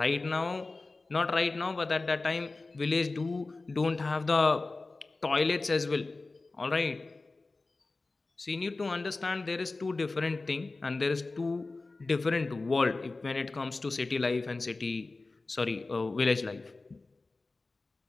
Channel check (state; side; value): quieter; right; 3.5 dB